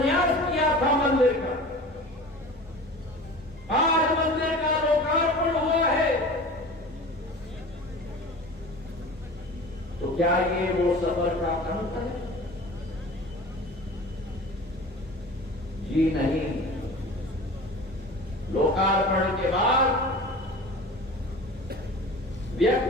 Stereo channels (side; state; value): both; normal; correlation 0.38